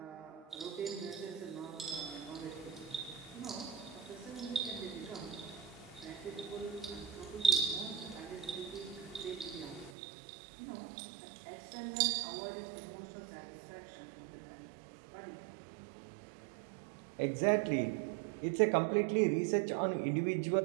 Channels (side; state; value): left; drops out; at 10.0 s